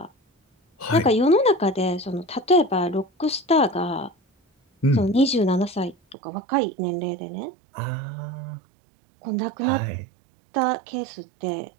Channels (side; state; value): left; drops out; at 6.2 s